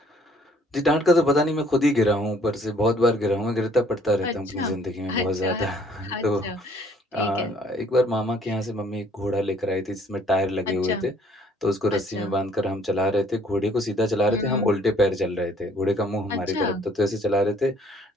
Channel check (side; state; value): both; normal; correlation 0.60